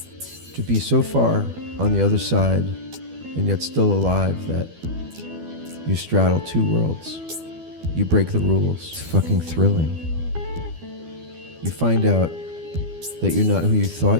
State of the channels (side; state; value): left; late; 12 ms